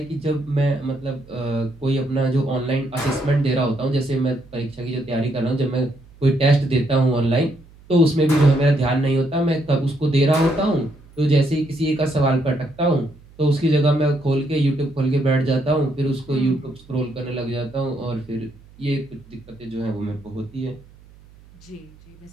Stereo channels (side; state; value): right; noise; hum, 25 dB below the sound